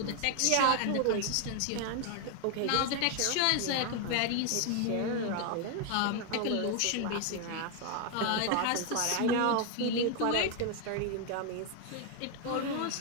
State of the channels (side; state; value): both; different; correlation 0.01